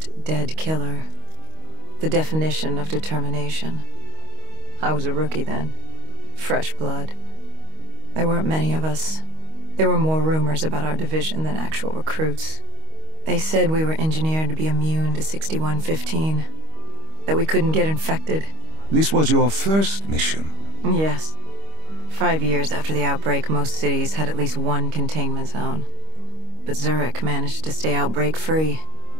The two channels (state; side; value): late; left; 25 ms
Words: dead killer. The definition of determination. I was a rookie then. Fresh blood. There weren't many of us. There were more rumors about our division than actual recruits. They said we were engineered to be immune to 6115. That we couldn't get infected. This was your first mission? Yes. 5 years after the outbreak, most cities had at least one containment zone. But Zurich managed to stay outbreak-free.